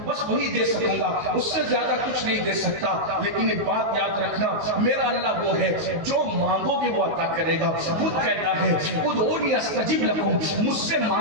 بس وہی دے سکوں گا, اس سے زیادہ کچھ نہیں دے سکتا. لیکن ایک بات یاد رکھنا, میرا اللہ وہ ہے جو مانگو گے وہ عطا کرے گا. خود کہتا ہے ادعونی استجب لکم, مجھ سے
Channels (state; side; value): late; left; 19 ms